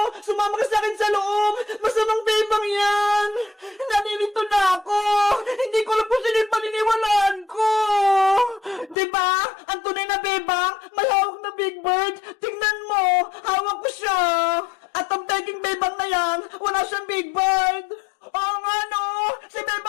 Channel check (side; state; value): right; drops out; at 9.0 s